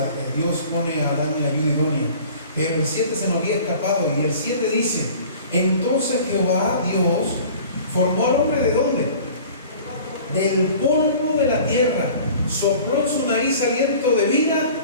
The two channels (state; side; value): inverted; both; correlation -0.45